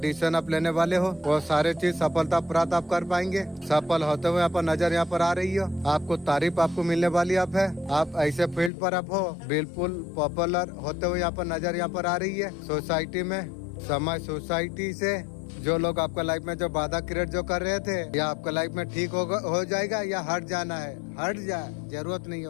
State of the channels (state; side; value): drops out; right; at 8.7 s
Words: आप लेने वाले हो, वो सारे चीज सफलता प्राप्त आप कर पाएंगे। सफल होते हुए यहाँ पर नजर यहाँ पर आ रही हो, आपको तारीफ आपको मिलने वाली आप है। आप ऐसे फील्ड पर आप हो, बिल्कुल पॉपुलर होते हुए यहाँ पर नजर यहाँ पर आ रही है। सोसाइटी में समाज सोसाइटी से जो लोग आपका लाइफ में जो बाधा क्रिएट जो कर रहे थे, या आपका लाइफ में ठीक हो जाएगा या हट जाना है, हट जाए, जरूरत नहीं